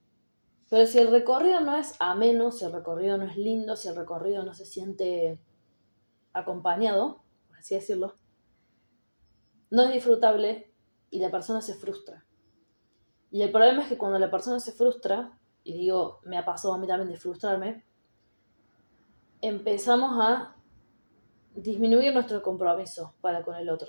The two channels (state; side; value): inverted; both; correlation -1.00